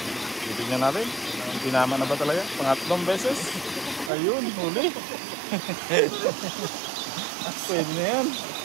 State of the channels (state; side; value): drops out; left; at 4.1 s